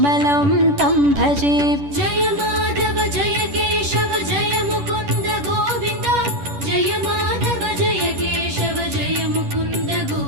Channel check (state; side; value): late; left; 10 ms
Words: तं भजे। जय माधव जय केशव जय मुकुन्द गोविन्द जय माधव जय केशव जय मुकुन्द